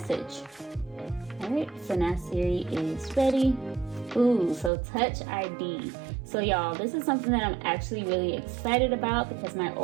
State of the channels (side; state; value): left; drops out; at 4.7 s